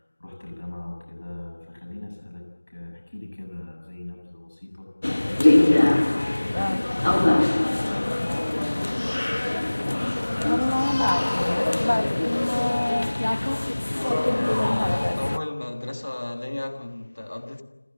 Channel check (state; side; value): inverted; both; correlation -1.00